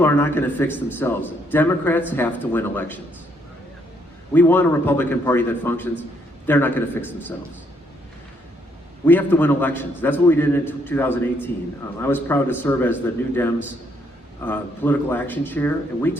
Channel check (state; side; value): normal; both; correlation 0.72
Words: are not going to fix themselves. Democrats have to win elections. We want a Republican Party that functions. They're not going to fix themselves. We have to win elections. That's what we did in 2018. I was proud to serve as the New Dems political action chair, and we